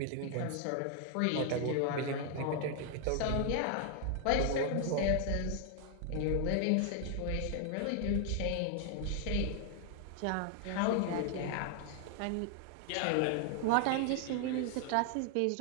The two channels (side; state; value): both; different; correlation 0.00